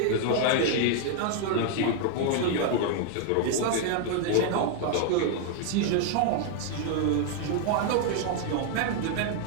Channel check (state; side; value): different; both; correlation 0.00